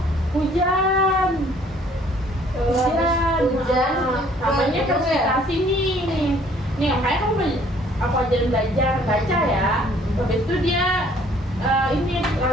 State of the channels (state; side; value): normal; both; correlation 0.59